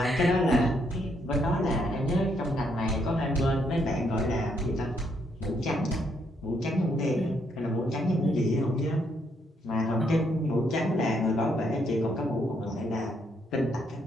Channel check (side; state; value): both; normal; correlation 0.74